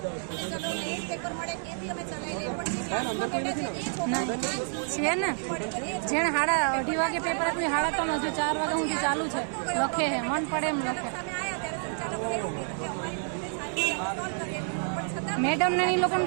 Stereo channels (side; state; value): left; silent; 59 dB below the other